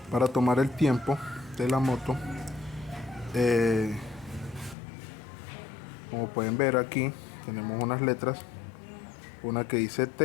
Para tomar el tiempo de la moto. Como pueden ver aquí, tenemos unas letras, una que dice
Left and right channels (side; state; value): right; drops out; at 4.8 s